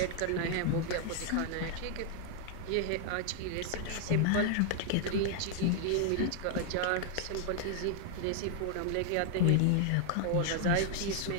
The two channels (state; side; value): different; both; correlation 0.00